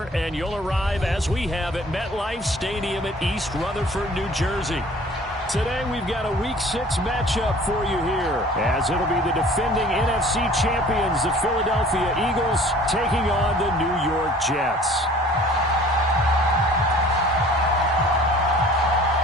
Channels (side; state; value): both; normal; correlation 0.49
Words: and you'll arrive, as we have, at MetLife Stadium at East Rutherford, New Jersey. Today we've got a Week 6 matchup for you here, as it'll be the defending NFC champions, the Philadelphia Eagles, taking on the New York Jets.